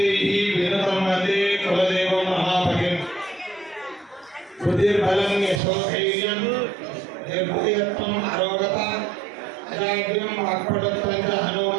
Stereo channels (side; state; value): left; drops out; at 5.6 s